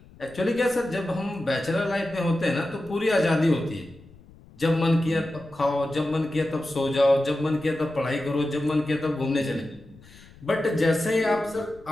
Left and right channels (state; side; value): noise; left; rumble, 23 dB below the sound